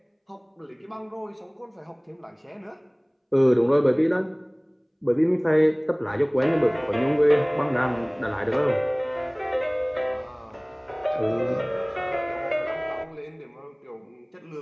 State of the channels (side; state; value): both; identical; correlation 1.00